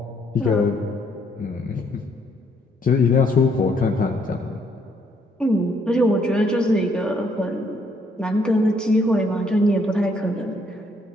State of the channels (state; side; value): normal; both; correlation 0.69